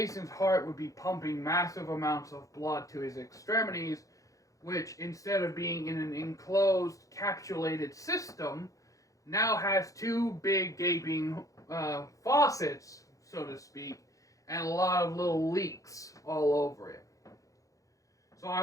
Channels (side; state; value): right; late; 0.16 ms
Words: heart would be pumping massive amounts of blood to his extremities, which, instead of being in an enclosed, capsulated system, now has two big gaping faucets, so to speak, and a lot of little leaks all over it. So